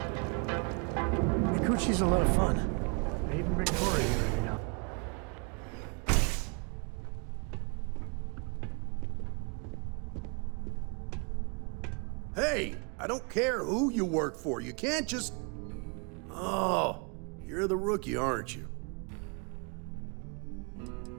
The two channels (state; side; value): quieter; left; 35.1 dB